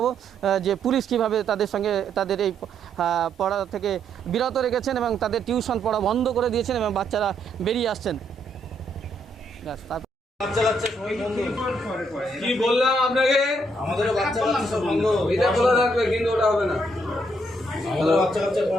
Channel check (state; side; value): normal; both; correlation 0.73